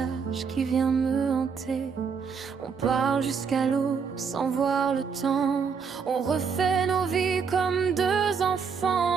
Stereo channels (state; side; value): quieter; left; 6.0 dB